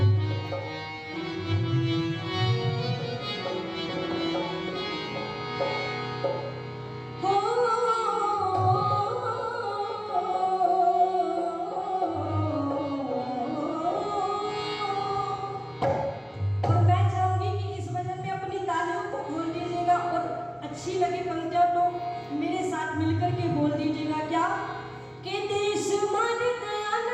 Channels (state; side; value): identical; both; correlation 1.00